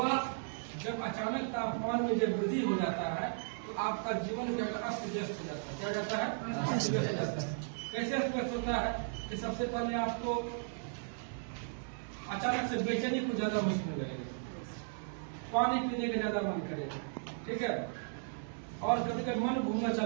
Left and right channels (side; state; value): left; silent; digital silence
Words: जब अचानक तापमान में जब वृद्धि हो जाता है तो आपका जीवन क्या अस्त व्यस्त हो जाता है। क्या जाता है, अस्त व्यस्त हो जाता है। कैसे अस्त व्यस्त होता है कि सबसे पहले आपको अचानक से बेचैनी कुछ ज्यादा महसूस होने लगेगा, पानी पीने का ज्यादा मन करेगा। ठीक है, और कभी कभी मन घूमना